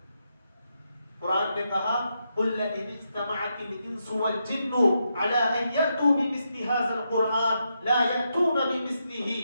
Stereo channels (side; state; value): both; inverted; correlation -0.83